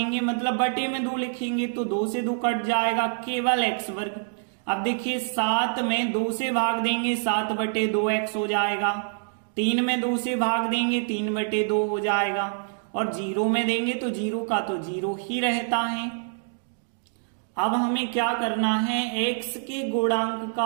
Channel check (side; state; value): left; silent; digital silence